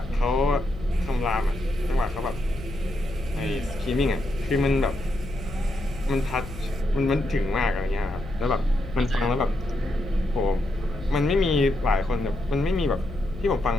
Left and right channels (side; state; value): left; noise; hum, 12 dB below the sound